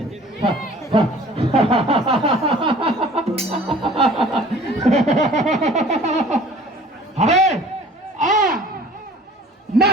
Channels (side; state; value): both; normal; correlation 0.49